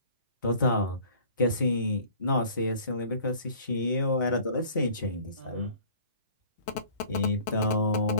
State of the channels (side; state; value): both; inverted; correlation -0.49